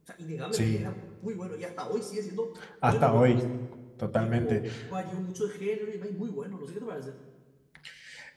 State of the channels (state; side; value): identical; both; correlation 1.00